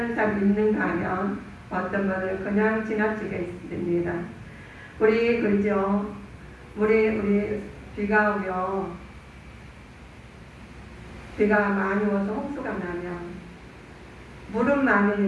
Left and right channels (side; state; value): both; identical; correlation 1.00